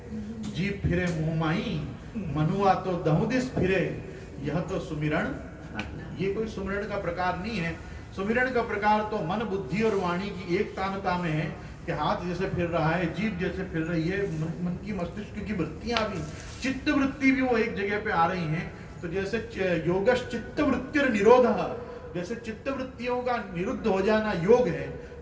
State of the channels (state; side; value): identical; both; correlation 1.00